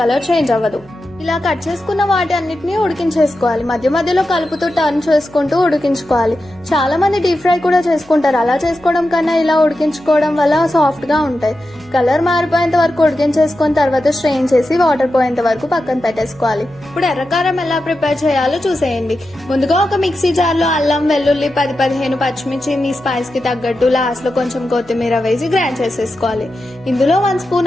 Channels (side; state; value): left; noise; hum, 26 dB below the sound